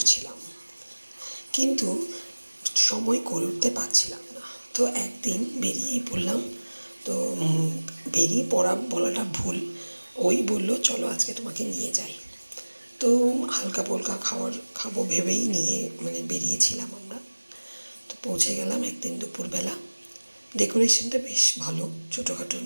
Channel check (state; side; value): inverted; both; correlation -1.00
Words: কিন্তু সময় করে উঠতে পারছিলাম না। তো একদিন বেরিয়েই পড়লাম। তো বেরিয়ে পড়া বলাটা ভুল, ওই বলল চলো আজকে তোমাকে নিয়ে যাই। তো হালকা পোলকা খাবো ভেবেই বেরিয়েছিলাম আমরা। তো পৌঁছে গেলাম একদিন দুপুরবেলা। ডেকোরেশনটা বেশ ভালো, ছোটোখাটোর